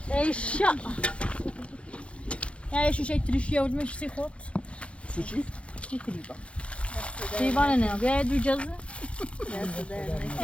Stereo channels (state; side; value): late; right; 0.060 ms